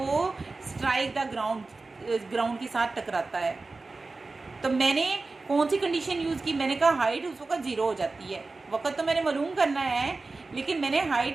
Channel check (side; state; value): left; quieter; 3.6 dB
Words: स्ट्राइक द ग्राउंड के साथ टकराता है। तो मैंने कौन सी कंडीशन यूज़ की? मैंने कहा हाइट उस वक़्त 0 हो जाती है। वक़्त तो मैंने मालूम करना है, लेकिन मैंने